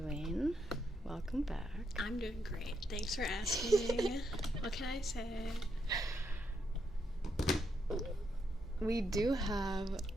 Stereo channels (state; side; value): normal; both; correlation 0.79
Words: Welcome back. I'm doing great. Thanks for asking. What can I say? We do have